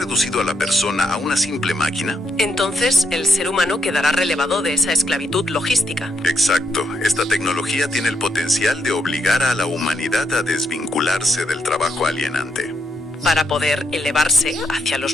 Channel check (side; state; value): both; normal; correlation 0.78